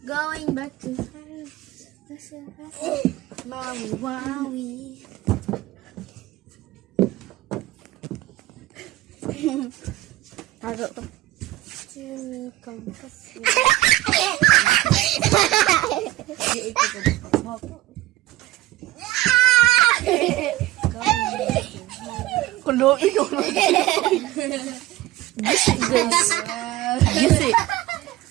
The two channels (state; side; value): quieter; left; 16.5 dB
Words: Going back to Maui, wawi. Tago to. Chini kampas. Kulo, ikaw na. Gisi, guys. Gisi.